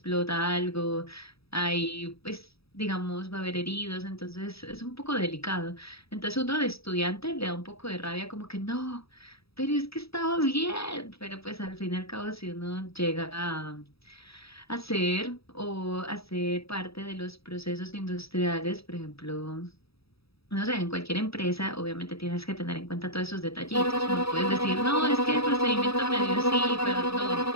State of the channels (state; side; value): late; right; 0.77 ms